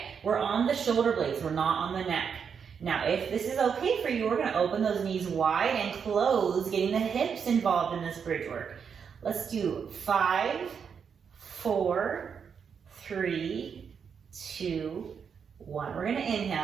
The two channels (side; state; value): left; quieter; 6.7 dB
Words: we're on the shoulder blades, we're not on the neck. Now, if this is okay for you, we're gonna open those knees wide and close, getting the hips involved in this bridge work. Let's do 5, 4, 3, 2, 1. We're gonna